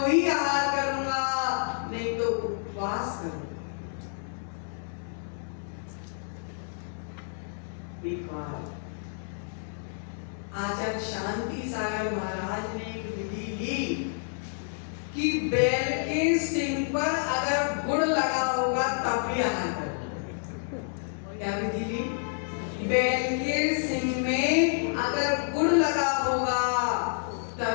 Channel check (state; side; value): silent; right; 58 dB below the other